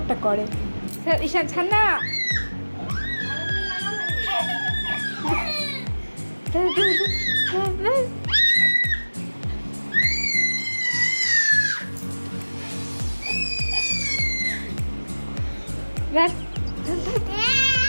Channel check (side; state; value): both; inverted; correlation -1.00